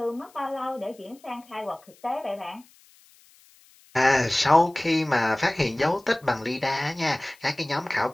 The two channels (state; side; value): noise; left; hiss, 28 dB below the sound